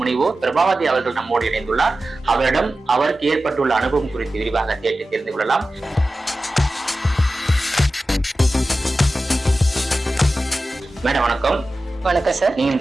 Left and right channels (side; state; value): both; normal; correlation 0.94